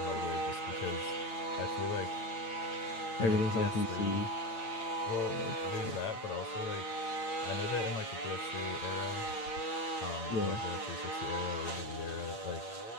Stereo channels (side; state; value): right; late; 8.9 ms